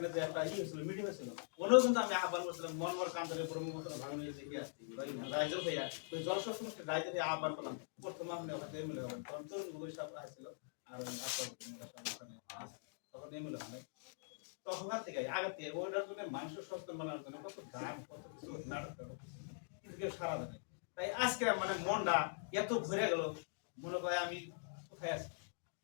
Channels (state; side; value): silent; right; digital silence